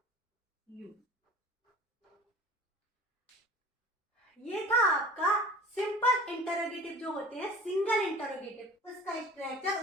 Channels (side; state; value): both; normal; correlation 0.42